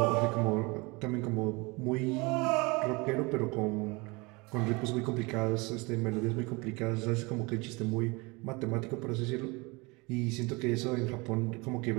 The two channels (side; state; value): left; quieter; 26.1 dB